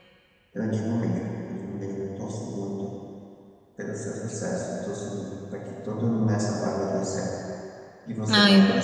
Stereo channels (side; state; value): both; identical; correlation 1.00